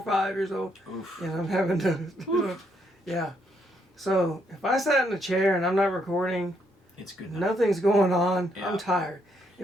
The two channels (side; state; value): both; normal; correlation 0.74